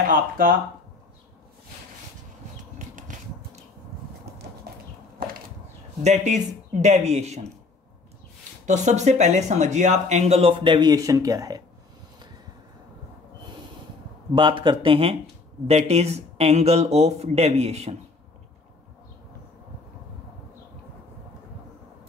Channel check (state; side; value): quieter; right; 3.8 dB